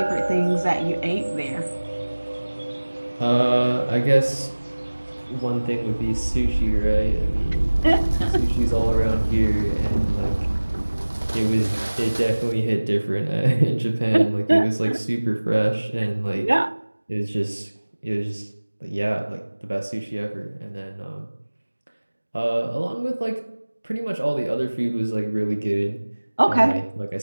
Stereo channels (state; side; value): inverted; both; correlation -1.00